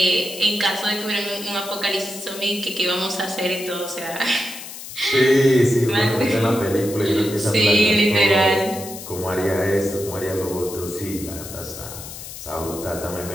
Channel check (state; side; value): noise; left; hiss, 12 dB below the sound